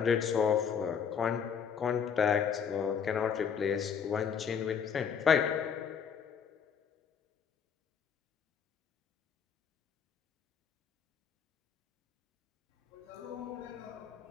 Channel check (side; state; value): right; quieter; 7.2 dB